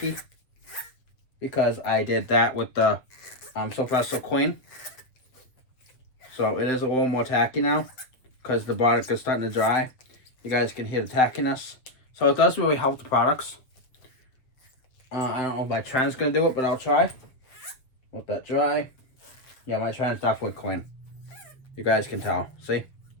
because I did that with the Sylvester Clean. So it is a little more tacky now because the product is starting to dry. You guys can hear the tackiness. So it does really help the products. I don't know if my trend's going to do it, but I'll try. Let that dry. Yeah, my trend's definitely clean. You guys can tell. See?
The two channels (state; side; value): late; right; 7.3 ms